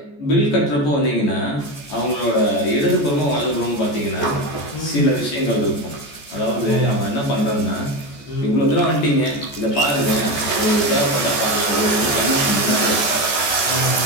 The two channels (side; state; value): right; late; 14 ms